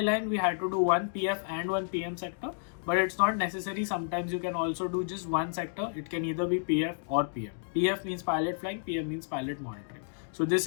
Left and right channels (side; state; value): right; silent; digital silence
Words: we had to do one PF and one PM sector, but it's not necessary. Sometimes you can also do just one sector. It can either be PF or PM. PF means pilot flying, PM means pilot monitoring. So this